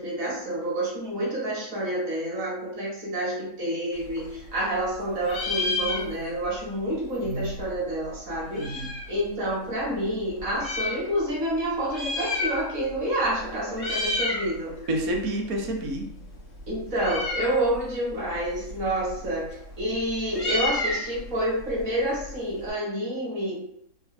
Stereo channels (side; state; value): left; late; 3.6 ms